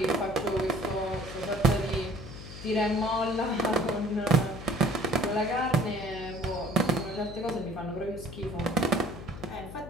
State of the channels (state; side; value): noise; left; hum, 12 dB below the sound